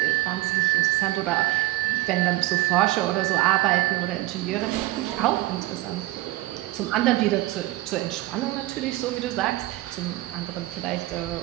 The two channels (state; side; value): quieter; left; 18.4 dB